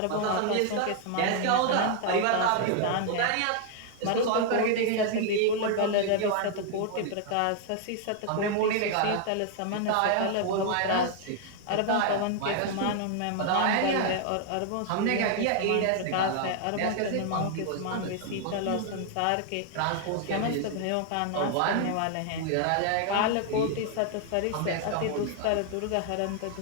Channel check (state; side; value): different; both; correlation 0.00